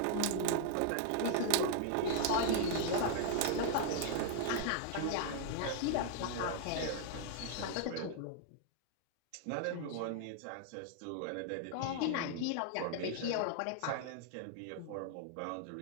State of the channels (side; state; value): both; different; correlation 0.00